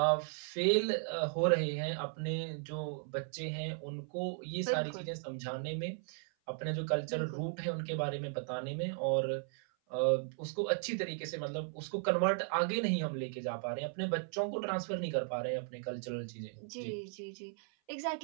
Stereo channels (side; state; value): left; silent; 54 dB below the other